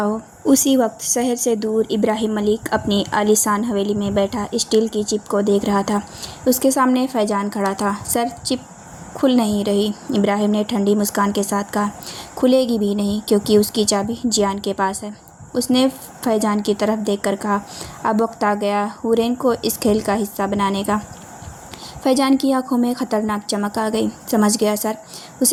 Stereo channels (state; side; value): identical; both; correlation 1.00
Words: उसी वक्त शहर से दूर इब्राहिम मलिक अपनी आलीशान हवेली में बैठा स्टील की चिप को देख रहा था। उसके सामने फैजान खड़ा था। सर, चिप खुल नहीं रही। इब्राहिम ने ठंडी मुस्कान के साथ कहा। खुलेगी भी नहीं, क्योंकि उसकी चाबी जियान के पास है। उसने फैजान की तरफ देखकर कहा, अब वक्त आ गया हुरैन को इस खेल का हिस्सा बनाने का। फैजान की आंखों में खतरनाक चमक आ गई। समझ गया सर।